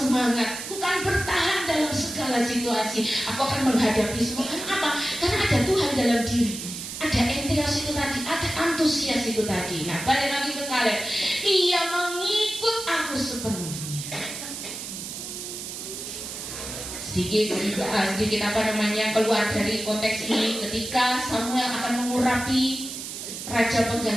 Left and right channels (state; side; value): noise; right; hiss, 8 dB below the sound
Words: aku kan bertahan dalam segala situasi, aku akan menghadapi semua. Kenapa? Karena ada Tuhan dalam diri, ada entheos itu tadi, ada antusias itu tadi. Nah, balik lagi ke Kaleb, ia mengikut aku sepenuhnya. Sedikit keluar dari konteks ini, ketika Samuel akan mengurapi raja